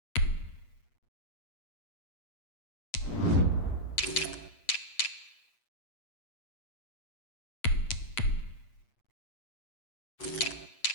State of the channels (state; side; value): late; right; 8.4 ms